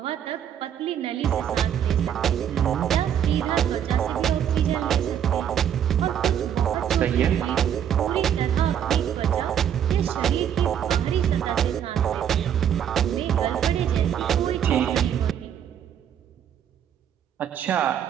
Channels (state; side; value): quieter; left; 9.3 dB